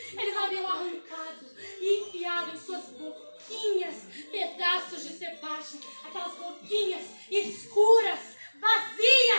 Eles haviam arrancado e enfiado em suas boquinhas pedaços de Sebastião, aquelas boquinhas escuras,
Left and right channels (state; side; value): inverted; both; correlation -1.00